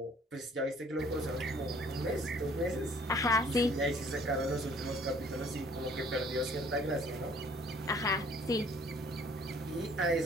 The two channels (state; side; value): normal; both; correlation 0.57